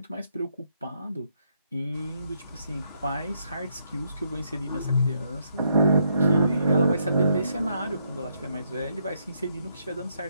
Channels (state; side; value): inverted; both; correlation -0.75